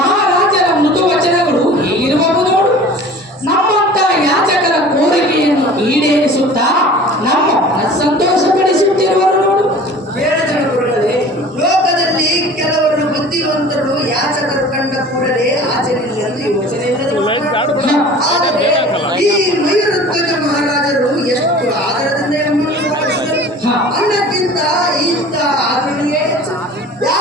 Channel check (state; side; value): normal; both; correlation 0.43